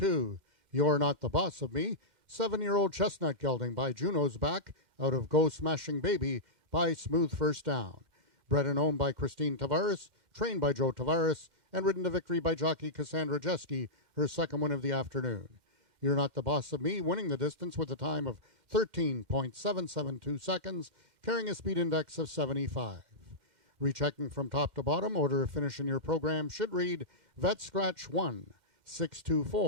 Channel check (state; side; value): late; left; 2.1 ms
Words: You're Not the Boss of Me, 7-year-old chestnut gelding by Juno's Back out of Go Smashing Baby by Smooth First Down. Bred and owned by Christine Tavares, trained by Joe Tavares, and ridden to victory by jockey Cassandra Jeske, her second win of the afternoon. You're Not the Boss of Me, winning the distance with a time of 13.772 seconds, carrying a speed index of 75. Rechecking from top to bottom, order of finish in your program should read Vet Scratch 1,